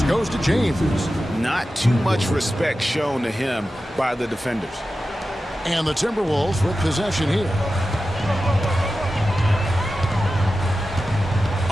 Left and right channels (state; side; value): normal; both; correlation 0.93